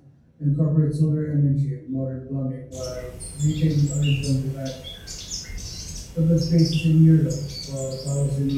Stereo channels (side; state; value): both; identical; correlation 1.00